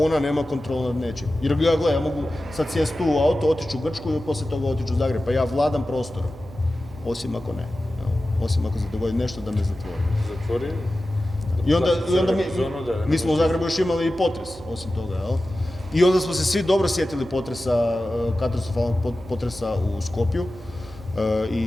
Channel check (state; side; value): noise; right; hum, 19 dB below the sound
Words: nema kontrolu nad nečim. Jer ja mogu sad sjesti tu u auto, otići u Grčku i poslije toga otići u Zagreb. Pa ja vladam prostorom. Osim ako ne. Osim ako se dogodi nešto da me zatvori. Zatvori? I onda mi smo u Zagrebu još imali i potres, osim toga, jel? I onda smo se svi dobro sjetili katastrofalnog potresa u Skopju